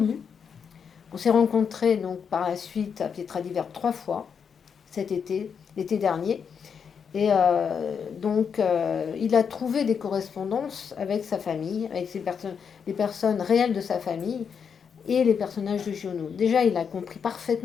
On s'est rencontrés donc par la suite à Pietra di Verne 3 fois cet été, l'été dernier. Et il a trouvé des correspondances avec sa famille, avec les personnes réelles de sa famille et les personnages de Giono. Déjà, il a compris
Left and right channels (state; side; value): quieter; right; 6.7 dB